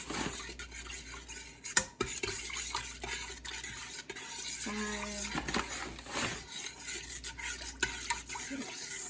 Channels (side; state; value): both; identical; correlation 1.00